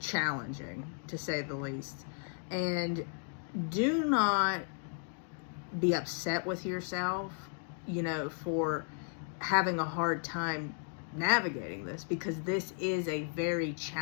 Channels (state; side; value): silent; right; 55 dB below the other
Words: challenging, to say the least. And do not be upset with yourself, for having a hard time navigating this, because this is a very